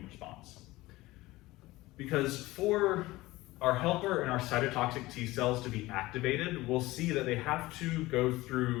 response. Because for our helper and our cytotoxic T cells to be activated, we'll see that they have to go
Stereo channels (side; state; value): right; quieter; 19.0 dB